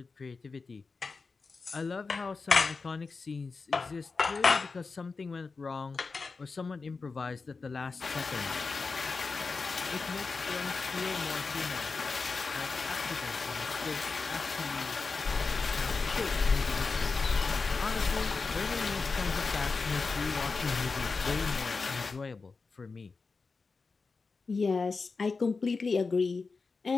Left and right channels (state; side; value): quieter; right; 4.4 dB